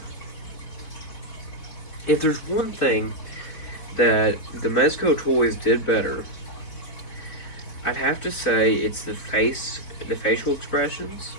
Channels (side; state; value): right; late; 4.1 ms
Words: if there's one thing that the Mezco toys did better, I'd have to say it's the facial expressions.